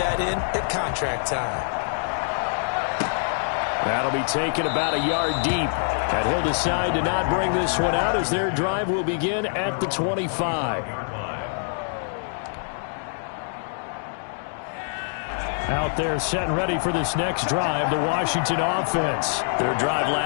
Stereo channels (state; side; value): silent; right; digital silence